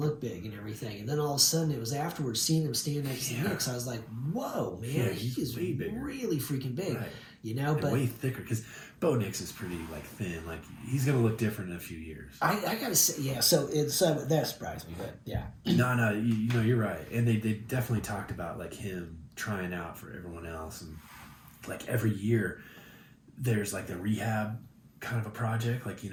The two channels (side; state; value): both; identical; correlation 1.00